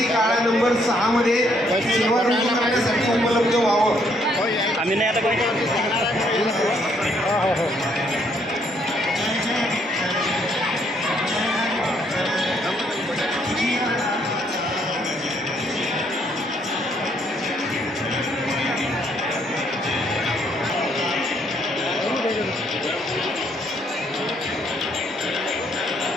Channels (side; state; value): both; normal; correlation 0.69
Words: काळा नंबर 6 मध्ये सेवा करण्यासाठी उपलब्ध व्हावं. आम्ही नाही आता